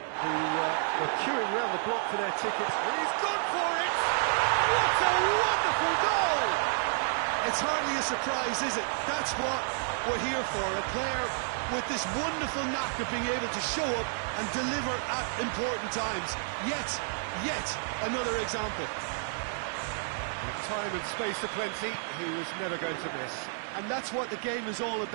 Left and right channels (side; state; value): left; silent; 58 dB below the other